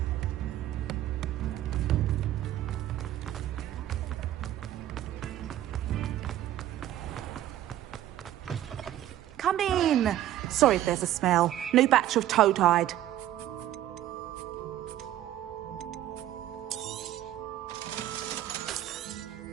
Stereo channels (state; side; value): quieter; left; 12.9 dB